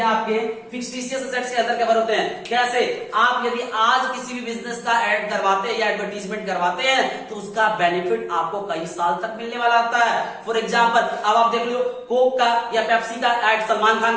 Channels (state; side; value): identical; both; correlation 1.00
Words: आपके फिक्टिशियस एसेट्स के अंदर कवर होते हैं। कैसे? आप यदि आज किसी भी बिजनेस का ऐड करवाते हैं या एडवर्टीजमेंट करवाते हैं तो उसका बेनिफिट आपको कई साल तक मिलने वाला आता है। फॉर एग्जांपल अब आप देख लो कोक का या पेप्सी का ऐड सलमान